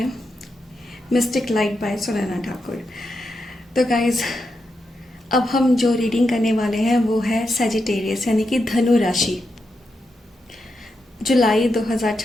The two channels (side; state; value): both; normal; correlation 0.85